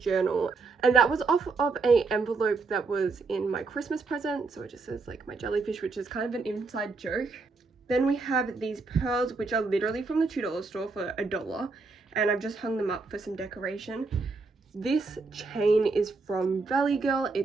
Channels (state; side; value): quieter; left; 4.2 dB